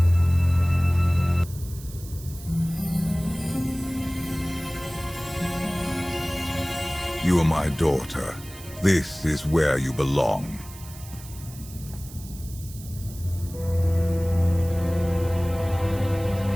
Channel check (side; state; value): right; noise; hiss, 17 dB below the sound